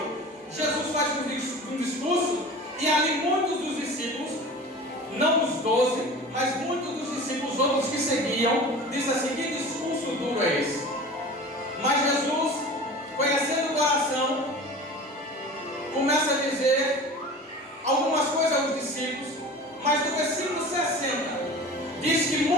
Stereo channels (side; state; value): both; normal; correlation 0.37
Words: Jesus faz um discurso, e ali muitos dos discípulos, não os 12, mas muitos dos discípulos, outros que seguiam, diz assim: que discurso duro é esse? Mas Jesus, conhecendo o coração, começa a dizer algumas coisas aos discípulos, mas no versículo 60 diz que